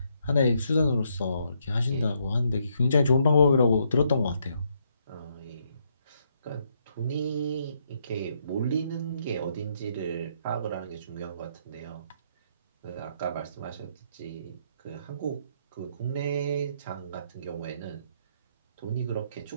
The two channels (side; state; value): both; inverted; correlation -0.74